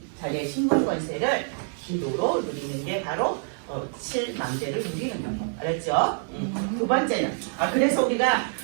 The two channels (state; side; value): silent; left; digital silence